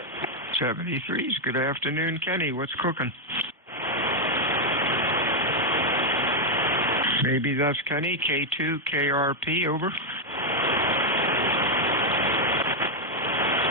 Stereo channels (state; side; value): normal; both; correlation 0.00